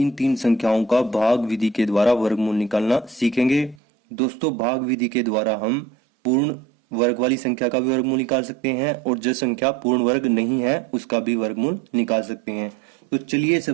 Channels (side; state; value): left; drops out; at 3.8 s